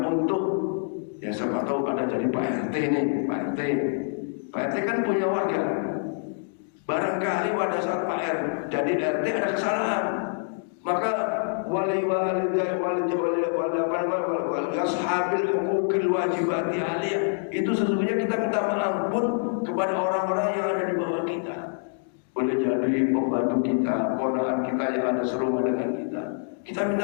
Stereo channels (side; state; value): right; silent; digital silence